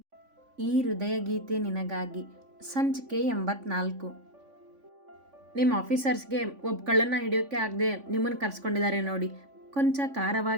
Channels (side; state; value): left; late; 3.5 ms